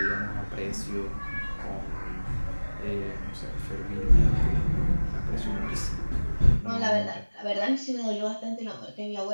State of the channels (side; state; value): both; inverted; correlation -1.00